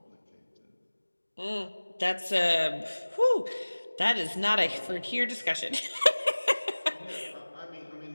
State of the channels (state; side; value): inverted; both; correlation -1.00